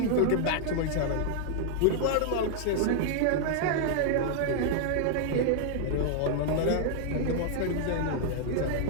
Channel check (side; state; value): both; different; correlation 0.00